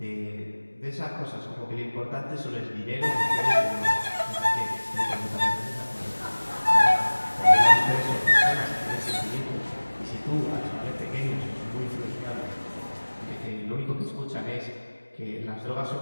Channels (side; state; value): both; inverted; correlation -1.00